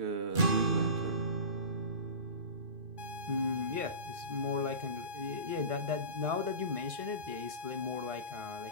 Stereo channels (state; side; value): late; left; 2.5 ms